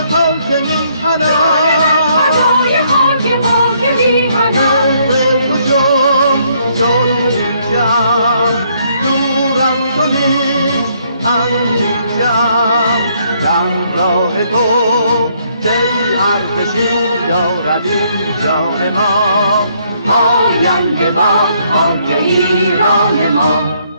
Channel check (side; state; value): both; inverted; correlation -0.69